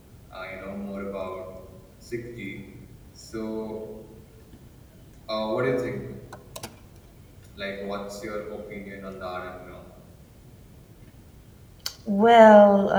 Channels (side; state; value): both; identical; correlation 1.00